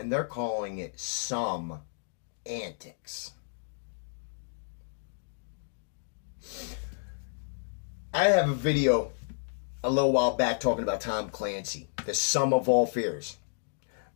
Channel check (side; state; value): right; silent; digital silence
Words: they're calling it some antics. I have a video a little while back talking about Tom Clancy, the sum of all fears.